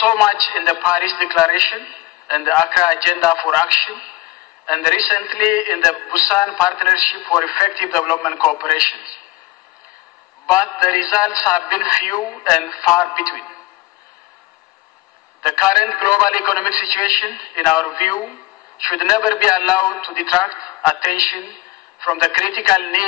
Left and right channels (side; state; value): right; quieter; 20.1 dB